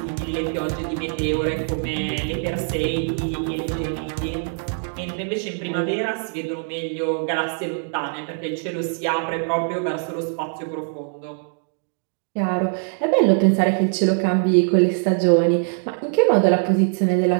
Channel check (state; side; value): silent; left; 64 dB below the other